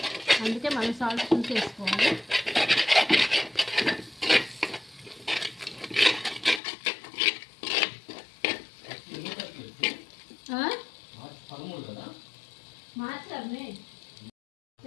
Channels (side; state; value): right; drops out; at 6.6 s